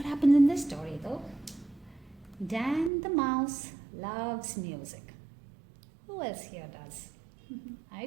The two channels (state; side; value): drops out; left; at 2.9 s